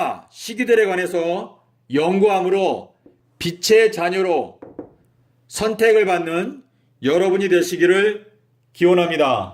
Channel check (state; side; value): identical; both; correlation 1.00